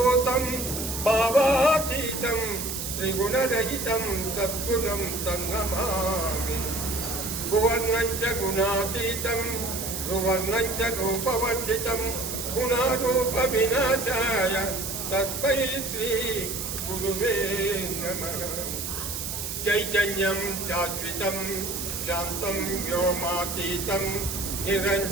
भावातीतं त्रिगुणरहितं सद्गुणं तन्नमामि भुवर्णं च गुणातीतं भुवर्णं च रूपवर्जितं गुणारूपविनाशाय तस्मै श्री गुरुवे नमः चैतन्यं शाश्वतं शान्तं व्योमातीतं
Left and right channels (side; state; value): right; noise; hiss, 5 dB below the sound